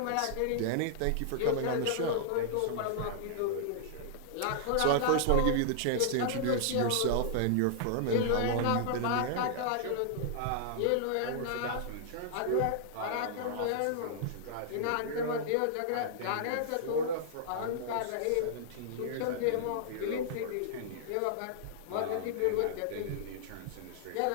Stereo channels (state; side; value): different; both; correlation -0.01